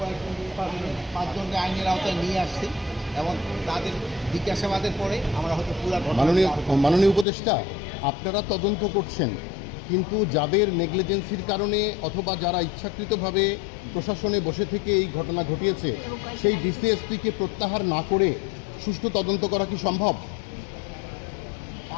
পাঁচজনকে আইনের আওতায় নিয়ে আসছি এবং তাদের জিজ্ঞাসাবাদের পরে আমরা হয়তো পুরা মাননীয় উপদেষ্টা, আপনারা তদন্ত করছেন, কিন্তু যাদের নেগলিজেন্সির কারণে অথবা যারা ইচ্ছাকৃতভাবে প্রশাসনে বসে থেকে এই ঘটনা ঘটিয়েছে সেই ডিসিএসপিকে প্রত্যাহার না করে সুষ্ঠু তদন্ত করা কি সম্ভব?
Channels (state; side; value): drops out; right; at 7.2 s